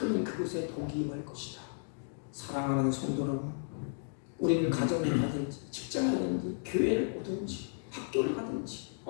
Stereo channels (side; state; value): right; silent; digital silence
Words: 그곳에 복이 임할 것이다. 사랑하는 성도 여러분, 우리는 가정에 가든지 직장에 가든지 교회를 오든지 학교를 가든지